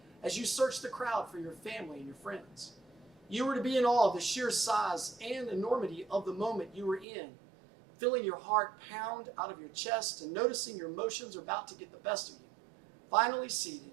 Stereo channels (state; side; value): drops out; left; at 7.1 s